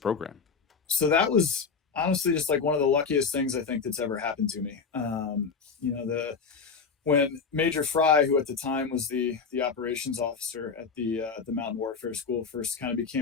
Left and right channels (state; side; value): quieter; right; 5.4 dB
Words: So that was honestly just like one of the luckiest things I think that's ever happened to me. When Major Fry, who at the time was the operations officer at the Mountain Warfare School, first kind of